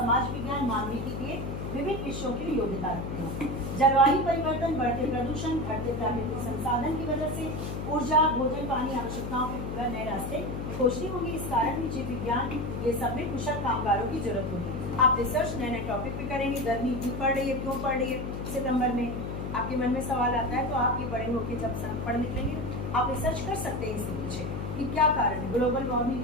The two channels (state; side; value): noise; left; hum, 5 dB below the sound